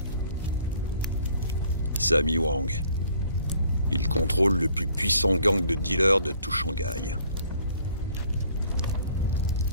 Sammy Wang. Il contrôle le plus puissant gang de dealers de tout Shanghai.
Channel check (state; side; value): inverted; both; correlation -0.59